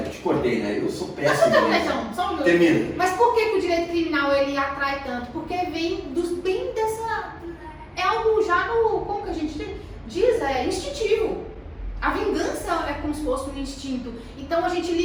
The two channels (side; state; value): both; identical; correlation 1.00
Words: te cortei, né? Eu sou péssimo. Só um Termina. Mas por que o direito criminal ele atrai tanto? Porque vem bem dessa... É algo já como que a gente diz? É instintivo. A vingança é como se fosse um instinto. Então a gente